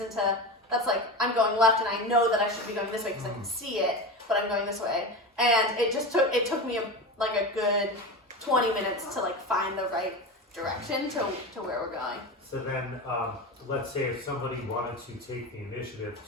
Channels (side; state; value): both; normal; correlation 0.25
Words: into, that's I'm going left, and I know that I should be going this way because I can see it, but I'm going this way. And it took me a good 20 minutes to find the right direction to where we're going. So then, let's say if somebody wanted to take the initiative